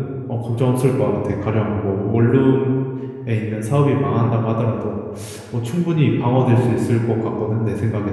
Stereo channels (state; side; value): identical; both; correlation 1.00